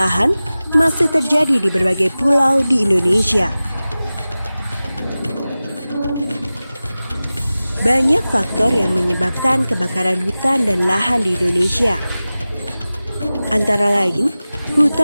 masih terjadi di berbagai pulau di Indonesia. Banyak faktor yang menyebabkan kebakaran hutan dan lahan di Indonesia. Antara lain,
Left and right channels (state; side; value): inverted; both; correlation -0.96